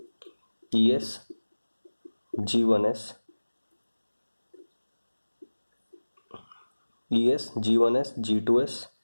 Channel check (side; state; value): both; inverted; correlation -1.00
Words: E S G one S E S G one S G two S